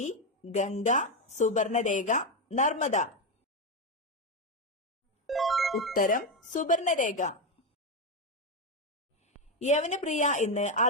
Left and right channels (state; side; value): normal; both; correlation 0.09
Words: ഗംഗ, സുവർണരേഖ, നർമ്മദ. ഉത്തരം സുവർണരേഖ. യവനപ്രിയ എന്ന്